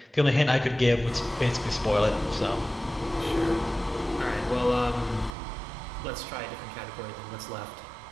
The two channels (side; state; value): left; drops out; at 5.3 s